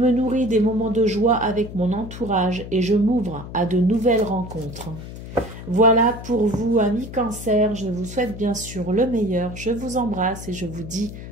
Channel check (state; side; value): noise; left; hum, 12 dB below the sound